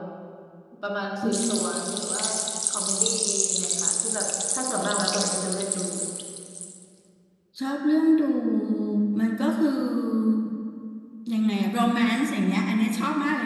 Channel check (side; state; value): both; identical; correlation 1.00